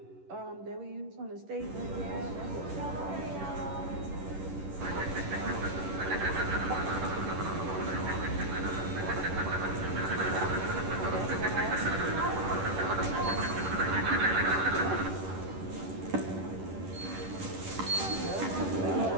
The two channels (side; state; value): left; late; 11 ms